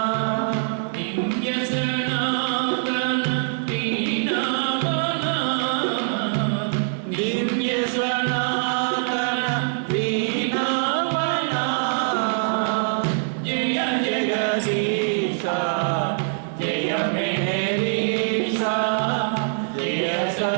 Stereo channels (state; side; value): silent; left; digital silence